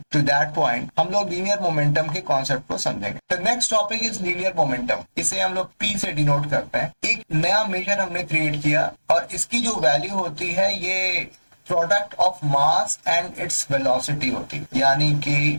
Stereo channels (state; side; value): inverted; both; correlation -1.00